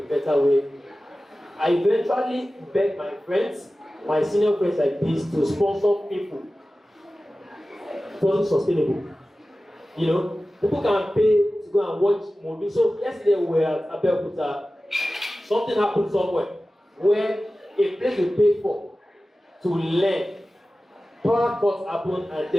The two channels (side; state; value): both; normal; correlation 0.95